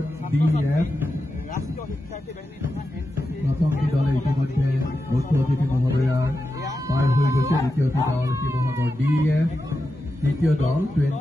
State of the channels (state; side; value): normal; both; correlation 0.90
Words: DEF প্ৰথমটি দলে ইতিমধ্যে মুখ্য অতিথি মহোদয়াৰ পাৰ হৈ গৈছে। দ্বিতীয়টি দল শিৱসাগৰ DEF, তৃতীয় দল